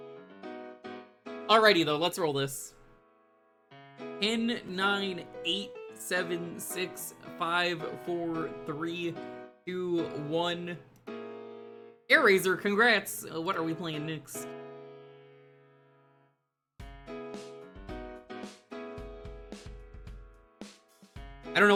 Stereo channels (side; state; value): both; identical; correlation 1.00